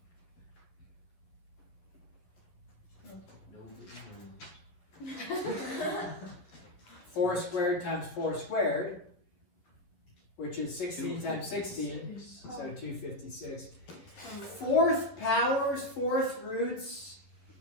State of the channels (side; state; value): right; late; 11 ms